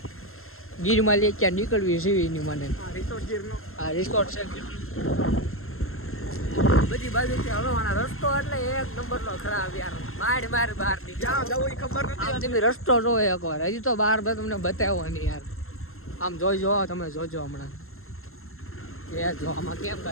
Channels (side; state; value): right; late; 0.62 ms